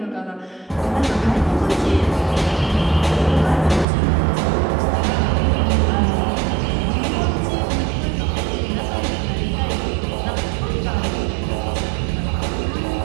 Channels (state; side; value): drops out; left; at 3.9 s